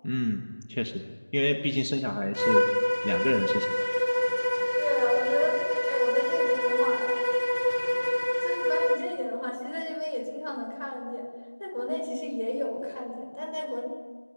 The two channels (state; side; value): inverted; both; correlation -1.00